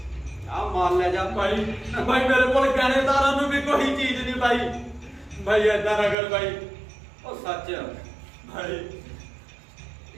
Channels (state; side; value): drops out; left; at 6.2 s